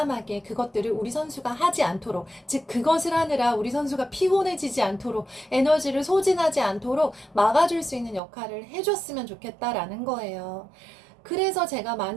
그것들을 우리 선수가 하지 않도록, 즉 그것을 하느라 우리 선수가 피곤해지지 않도록, 에너지를 소진하지 않도록 막아줄 수 있는 역할을 해줬으면 좋겠다라는 거예요. 그래서 제가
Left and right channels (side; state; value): left; drops out; at 8.2 s